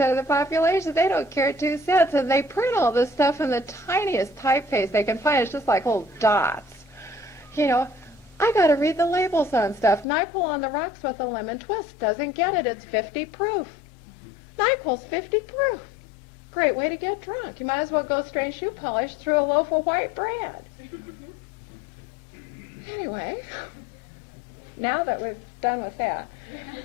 of the population. They don't care 2 cents. And they print all this stuff in the tiniest typeface they can find. It's just like little dots. I got to read the labels on stuff. NyQuil on the rocks with a lemon twist. Doesn't get it. It's 50 proof. NyQuil's 50 proof. Great way to get drunk. You might as well go strain shoe polish through a loaf of white bread. Anyway, now that we've done with that,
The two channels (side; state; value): right; drops out; at 10.1 s